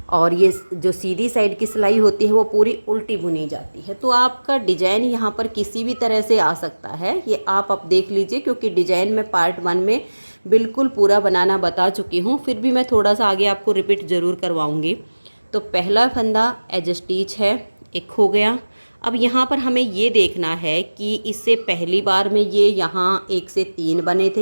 और ये जो सीधी साइड की सिलाई होती है वो पूरी उल्टी बुनी जाती है। तो आपका डिजाइन यहाँ पर किसी भी तरह से आ सकता है, ये आप अब देख लीजिए, क्योंकि डिजाइन मैं पार्ट 1 में बिल्कुल पूरा बनाना बता चुकी हूँ। फिर भी मैं थोड़ा सा आगे आपको रिपीट ज़रूर करवाऊँगी। तो पहला फंदा एज स्टिच है, एक हो गया। अब यहाँ पर हमें ये देखना है कि इससे पहली बार में ये यहाँ 1 से 3 बने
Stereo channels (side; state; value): both; inverted; correlation -1.00